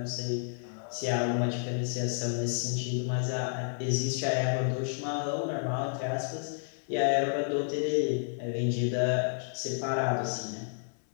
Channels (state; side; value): silent; right; 57 dB below the other